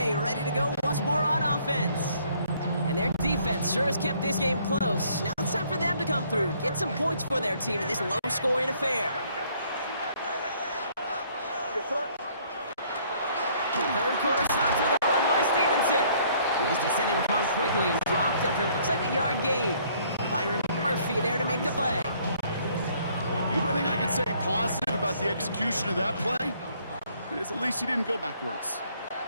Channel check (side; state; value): both; inverted; correlation -0.62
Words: ready to go once more on offense. And their defense sure has kept this game close. Now it's time for them to come through, get some points for their team in this low-scoring affair. 3rd quarter starts with a run by Stevenson. He's descended upon quickly and dropped after it looks like a yard gain. Byron Murphy there to make the play. The only thing I can say positive about the execution of that play, is at least he didn't go backwards.